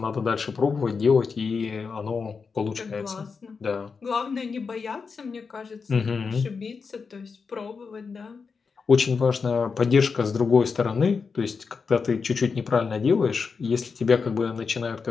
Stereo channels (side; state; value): right; quieter; 5.2 dB